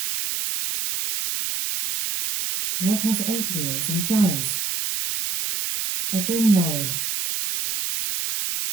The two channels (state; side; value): noise; right; hiss, 2 dB below the sound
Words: What has 8 wheels and flies? A bin lorry.